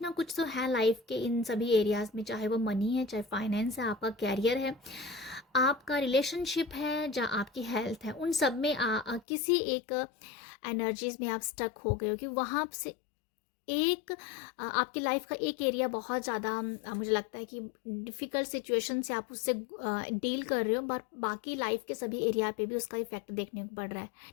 ना कुछ तो है लाइफ के इन सभी एरियाज़ में, चाहे वो मनी है, चाहे फाइनेंस है, आपका कैरियर है, आपका रिलेशनशिप है, या आपकी हेल्थ है। उन सब में किसी एक एनर्जीज में आप स्टक हो गए हो कि वहाँ से एक आपकी लाइफ का एक एरिया बहुत ज़्यादा मुझे लगता है कि डिफ़िकल्ट सिचुएशन से आप उससे डील कर रहे हो, बट बाकी लाइफ के सभी एरिया पे भी उसका इफेक्ट देखने को पड़ रहा है।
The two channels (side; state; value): right; drops out; at 9.2 s